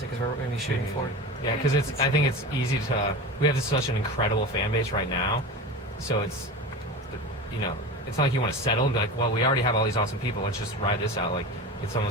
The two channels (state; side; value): normal; both; correlation 0.29